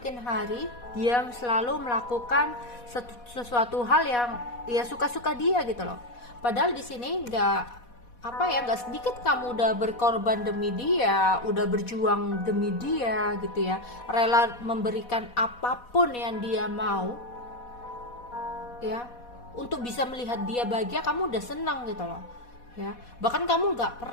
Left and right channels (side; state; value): right; late; 4.1 ms